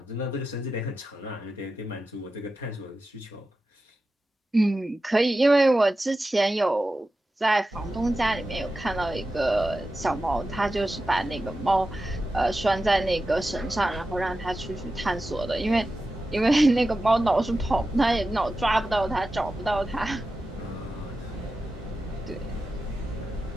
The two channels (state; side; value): normal; both; correlation 0.92